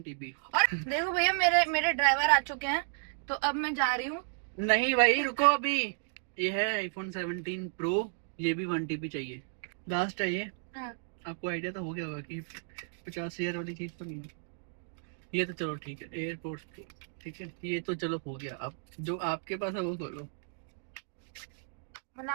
TB। और देखो भैया, मेरे मेरे ड्राइवर आ चुके हैं, तो अब मैं जा रही हूँ। नहीं भाई, रुको अभी। ये है iPhone 17 Pro, ये भी 1 TB चाहिए, लास्ट है ये। हाँ। आपको आइडिया तो हो गया होगा कि 50,000 वाली चीज तो नहीं है ये। तो चलो ठीक है, एयरपोर्ट, ठीक है, ये तो चलो हो गया। अब जो आपके पास है वो खोलो। मतलब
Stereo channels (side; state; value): left; silent; digital silence